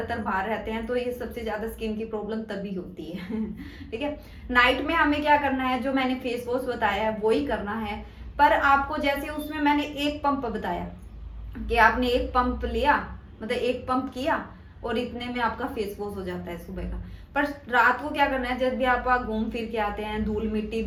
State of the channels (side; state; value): both; identical; correlation 1.00